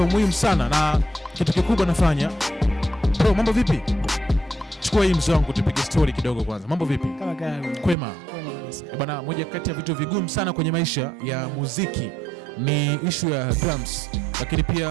muhimu sana na kitu kikubwa nafanya. Bro, mambo vipi? Chukua hii mzee wangu tupige story kidogo kwanza. Mambo vipi? Kama gani? Kwema. Bana, moja kati ya vitu vigumu sana kwenye maisha ya muziki ni issue ya drums, lakini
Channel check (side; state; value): left; drops out; at 8.0 s